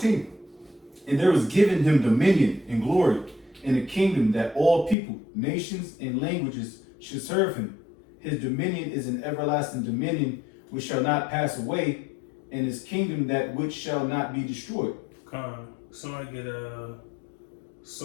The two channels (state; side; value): drops out; right; at 5.0 s